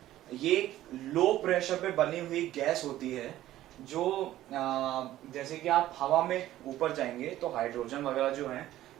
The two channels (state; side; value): quieter; left; 14.1 dB